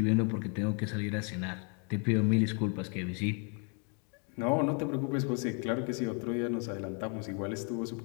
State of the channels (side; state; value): right; quieter; 38.6 dB